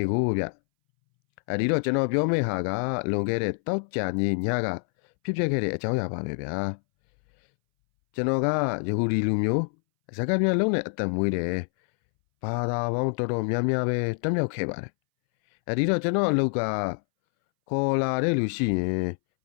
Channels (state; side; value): silent; right; 61 dB below the other